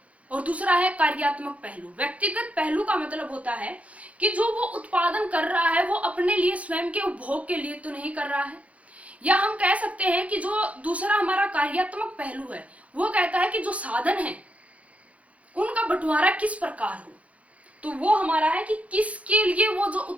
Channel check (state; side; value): late; left; 0.066 ms